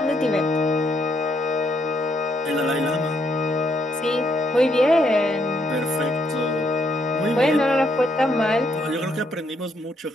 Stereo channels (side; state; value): both; normal; correlation 0.74